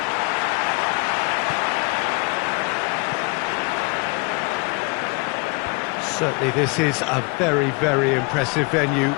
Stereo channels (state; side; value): quieter; right; 30.0 dB